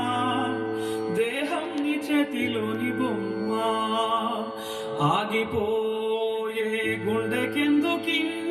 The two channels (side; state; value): both; identical; correlation 1.00